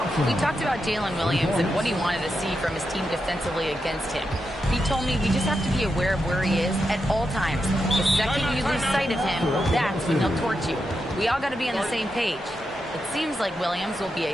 We talked about Jalen Williams and what he wanted to see from his team defensively against him. He told me we just have to be aware of where he is at all times. The second you lose sight of him, that's when he'll torch you. We all got to be on the same page. It seems like Williams will be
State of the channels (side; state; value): both; normal; correlation 0.86